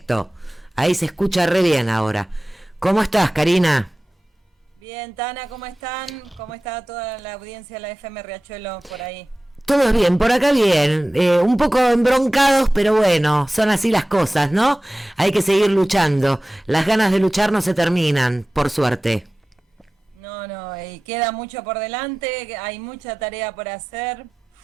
Ahí se escucha re bien ahora. ¿Cómo estás, Karina? Bien, Tana, ¿cómo están? ¿Cómo está toda la audiencia de la FM Riachuelo por ahí? Todo bien, por acá bien. Un poco embroncados, pero bueno, son así las cosas, ¿no? Hay que seguir luchando. Las ganas de luchar no se terminan, por suerte. No, no, y queda mucho por delante, hay mucha tarea por hacer.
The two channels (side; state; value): both; normal; correlation 0.96